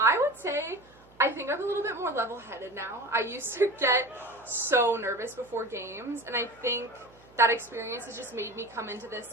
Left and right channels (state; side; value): noise; right; hum, 27 dB below the sound